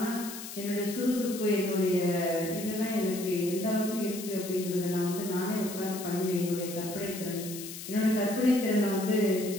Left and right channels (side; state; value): left; noise; hiss, 10 dB below the sound